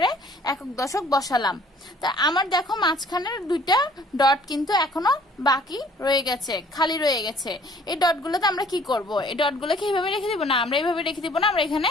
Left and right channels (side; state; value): both; normal; correlation 0.57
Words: একক দশক বসালাম। তা আমার দেখো মাঝখানের দুইটা ডট কিন্তু এখনো বাকি রয়ে গেছে, খালি রয়ে গেছে। এই ডটগুলোতে আমরা কি করব? এই ডটগুলোকে এইভাবে রেখে দিব না, আমরা এইভাবে রেখে দিব না, আমরা